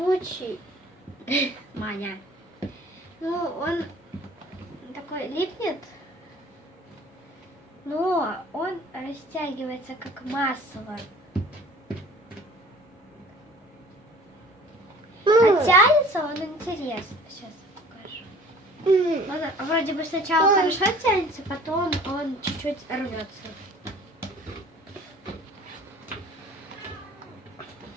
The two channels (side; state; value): both; normal; correlation 0.49